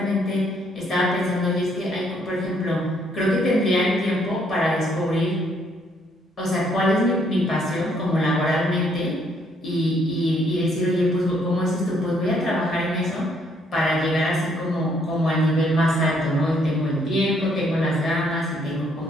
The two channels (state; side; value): normal; both; correlation 0.69